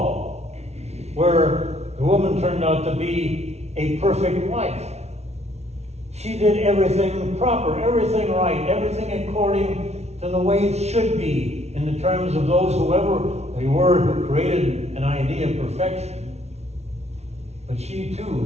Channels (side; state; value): left; late; 0.31 ms